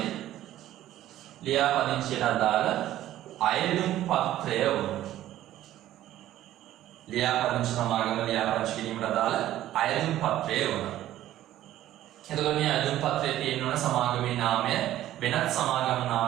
ලියාපදිංචියට අදාළ අයදුම් පත්‍රය වුණ. ලියාපදිංචි සමාගම ලියාපදිංචි කිරීමට අදාළ අයදුම් පත්‍රය වුණ. එතකොට මේ අයදුම් පත්‍රයේ තියෙන ඕන සමාගමේ නාමය වෙනත් සමාගම්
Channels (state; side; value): quieter; left; 13.5 dB